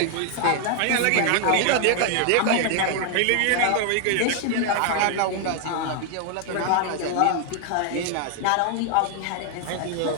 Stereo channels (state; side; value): different; both; correlation 0.00